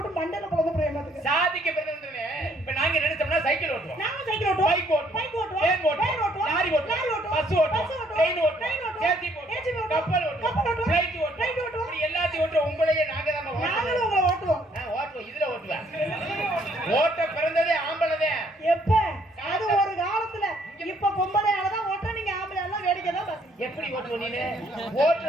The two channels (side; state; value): both; normal; correlation 0.66